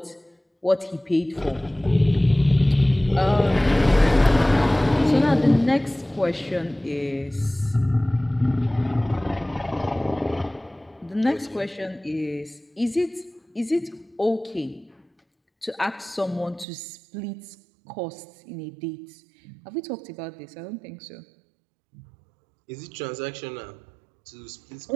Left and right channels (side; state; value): left; drops out; at 16.7 s